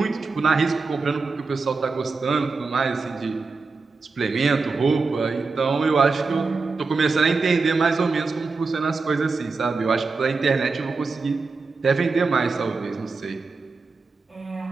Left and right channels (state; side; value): quieter; left; 4.2 dB